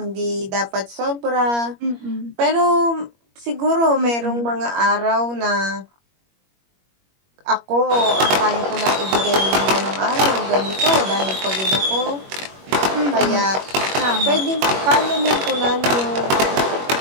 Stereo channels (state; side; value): late; left; 21 ms